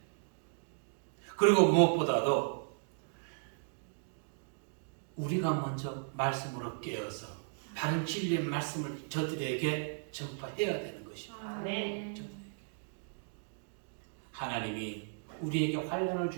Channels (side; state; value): left; silent; digital silence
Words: 그리고 무엇보다도 우리가 먼저 말씀으로 깨어서 바른 진리의 말씀을 저들에게 전파해야 되는 것입니다. 아멘. 하나님이 우리에게 환난을